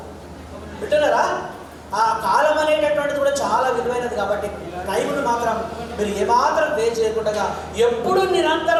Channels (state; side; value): identical; both; correlation 1.00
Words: వింటున్నారా? ఆ కాలం అనేటటువంటిది కూడా చాలా విలువైనది కాబట్టి టైంను మాత్రం మీరు ఏమాత్రం వేస్ట్ చేయకుండా ఎప్పుడు